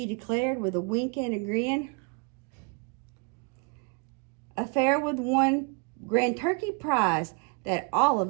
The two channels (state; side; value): quieter; left; 31.5 dB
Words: declared with a wink and a grin. A fair with one grand turkey prize that all